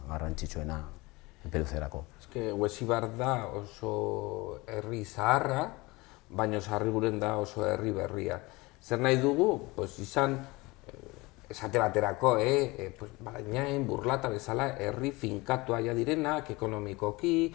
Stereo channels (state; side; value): quieter; right; 23.1 dB